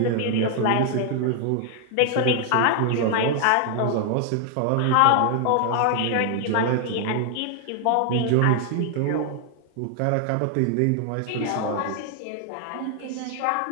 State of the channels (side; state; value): both; different; correlation 0.00